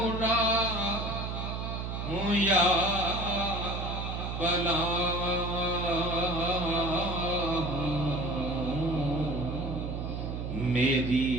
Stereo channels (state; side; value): noise; right; hum, 4 dB below the sound